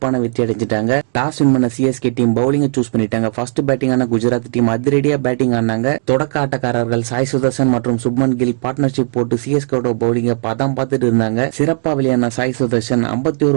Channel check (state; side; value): silent; left; digital silence